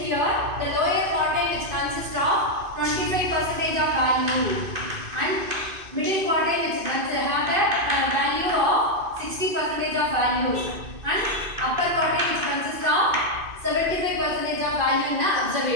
the lower quartile, which consists of 25% of value, and middle quartile, which have the value of 60% of values, and upper quartile, which consists of 75% of value in the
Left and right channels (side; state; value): left; late; 2.5 ms